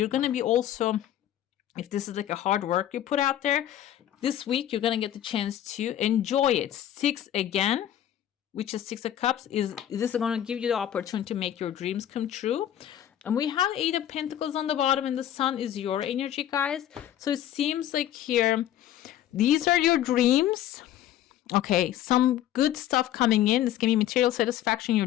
going to be also, if this is like a hard work you put out there, this week you're going to get the chance to enjoy it. 6 again, which is 6 of Cups, is this is going to give you the opportunity to make your dreams come true. And we have 8 of Pentacles on the bottom, and the Sun is your energy, guys. So it seems like here, these are your dreams. Okay, some good stuff coming in. This can be material satisfaction. Your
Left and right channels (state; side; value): quieter; right; 11.7 dB